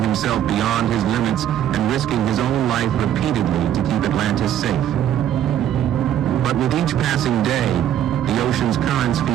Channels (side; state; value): left; quieter; 10.8 dB